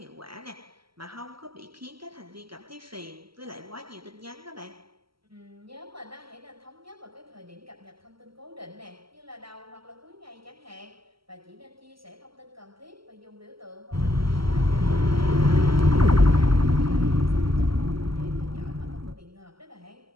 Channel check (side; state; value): left; late; 0.75 ms